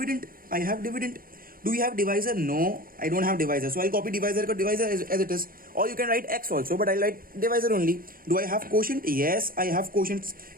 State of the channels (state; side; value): late; left; 0.42 ms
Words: I have dividend. Do we have divisor? No, I don't have divisor. So I'll copy divisor as it is. Or you can write x also, but I'll write divisor only. Do I have quotient? Yes, I have quotient.